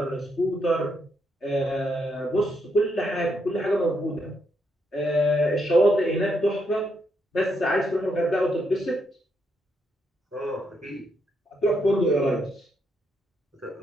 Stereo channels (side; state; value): both; normal; correlation 0.77